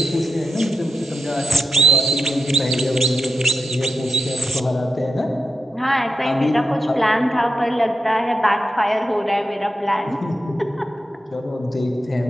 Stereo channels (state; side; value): normal; both; correlation 0.87